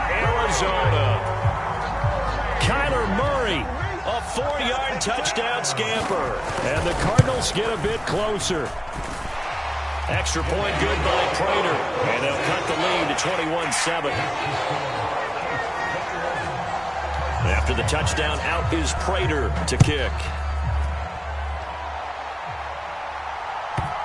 Arizona. Kyler Murray, a 4-yard touchdown scamper. And the Cardinals get a bit closer. Extra point good by Prater. And they'll cut the lead to 21-7. After the touchdown, out is Prater to kick.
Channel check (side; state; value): both; identical; correlation 1.00